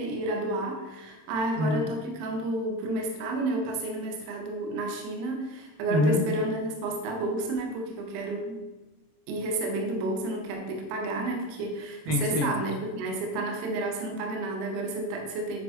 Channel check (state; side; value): late; left; 26 ms